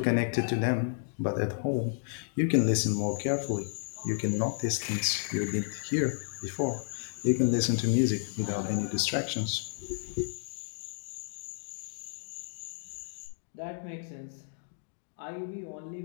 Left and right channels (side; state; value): right; silent; digital silence